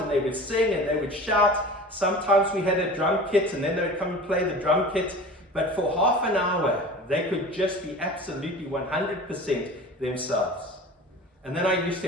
they would sing, and they would shout. Sometimes we had a drum kit, and then they would come and play the drum kit. But for half an hour, they could just be absolutely 100% themselves. And then I used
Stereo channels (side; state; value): both; normal; correlation 0.38